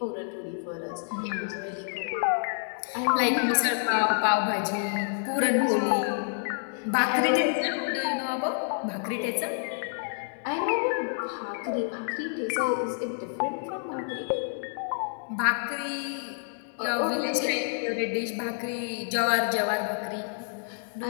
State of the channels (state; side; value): silent; right; digital silence